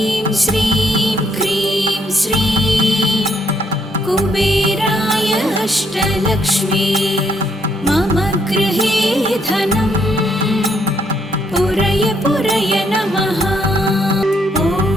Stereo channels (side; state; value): both; normal; correlation 0.72